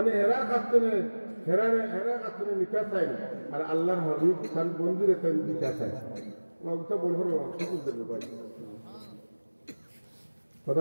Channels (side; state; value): both; inverted; correlation -1.00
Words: হেরা কাস্তনে নিতে চাই আর আল্লাহর হবিব তার বন্ধুরে তার দিতে চাই ওটা বলবো ভাই